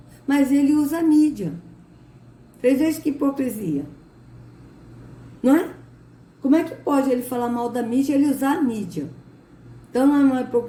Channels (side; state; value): both; identical; correlation 1.00